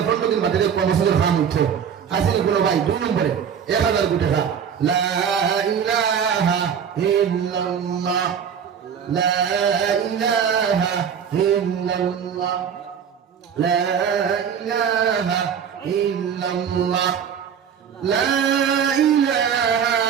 15 দিন বাদে কমিশনের ফান্ড উঠছে আসলে গুলো ভাই দুই নম্বরে 1000 কোটি টাকা লা ইলাহা ইল্লাল্লাহ লা ইলাহা ইল্লাল্লাহ লা ইলাহা ইল্লাল্লাহ লা ইলাহা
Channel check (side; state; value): left; quieter; 7.7 dB